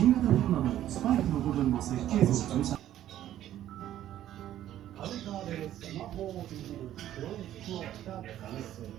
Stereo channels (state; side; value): quieter; left; 12.3 dB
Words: 型コロナのスパイクの部分の設計図を分析。カウンターでスマホをいじる黒い服を着た男性